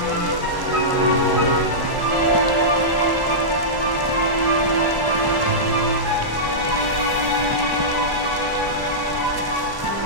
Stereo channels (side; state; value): left; late; 1.1 ms